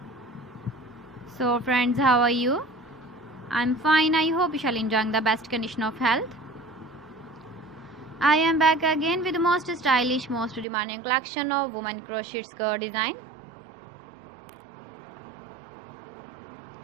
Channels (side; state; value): left; drops out; at 10.7 s